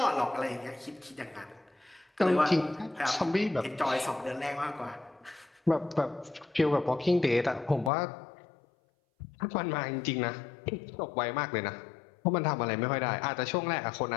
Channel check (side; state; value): right; drops out; at 7.9 s